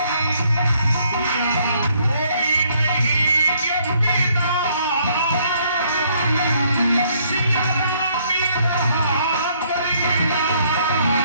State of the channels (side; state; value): both; inverted; correlation -0.67